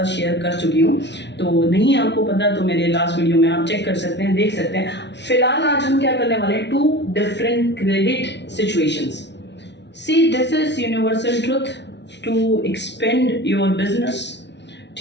शेयर कर चुकी हूँ। तो नहीं आपको पता तो मेरे लास्ट वीडियो में आप चेक कर सकते हैं, देख सकते हैं। फिलहाल आज हम क्या करने वाले हैं, 2 different credit situations. See this is universal truth to expand your business.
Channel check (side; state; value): right; late; 0.51 ms